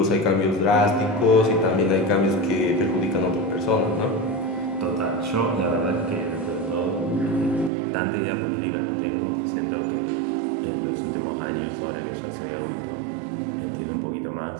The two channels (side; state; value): left; drops out; at 7.7 s